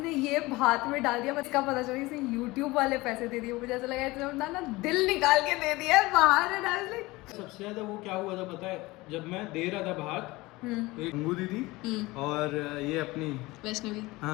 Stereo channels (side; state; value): right; quieter; 21.1 dB